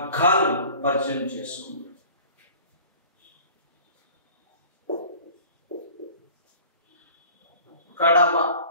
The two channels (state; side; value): inverted; both; correlation -0.45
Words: పరిచయం చేసుకుందాం. కడవ,